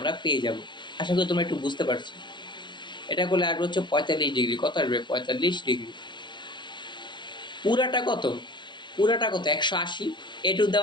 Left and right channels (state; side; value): late; right; 0.22 ms